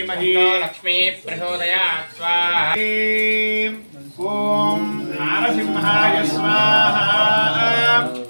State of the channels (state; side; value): inverted; both; correlation -1.00